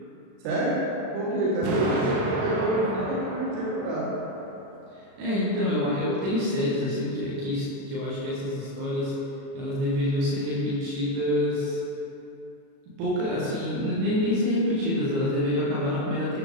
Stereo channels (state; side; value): late; left; 36 ms